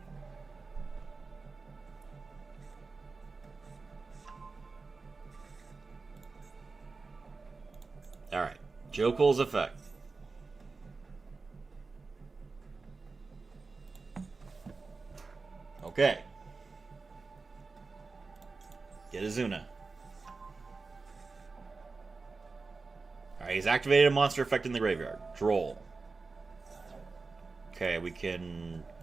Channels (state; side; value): quieter; left; 4.1 dB